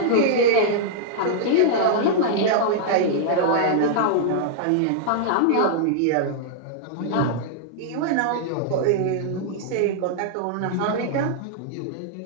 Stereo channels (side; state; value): both; different; correlation -0.02